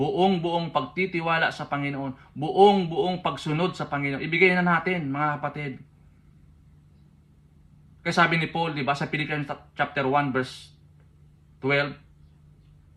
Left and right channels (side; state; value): both; identical; correlation 1.00